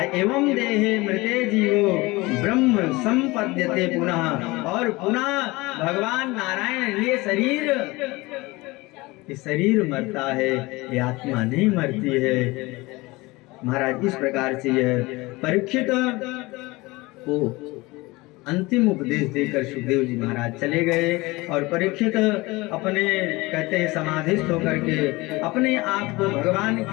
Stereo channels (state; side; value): quieter; right; 22.2 dB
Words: देहे मृते जीवो ब्रह्म संपद्यते पुनः। और पुनः भगवान नारायण ये शरीर मरता है, ये आत्मा नहीं मरती है। महाराज इस प्रकार से यह परीक्षित को अंतिम उपदेश देकर सुखदेव जी महाराज चले गए। और परीक्षित अपने कहते हैं समाधिस्थ होकर के अपने आप को भगवान